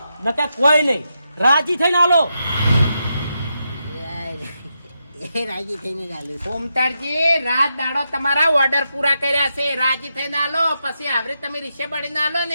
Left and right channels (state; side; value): inverted; both; correlation -0.85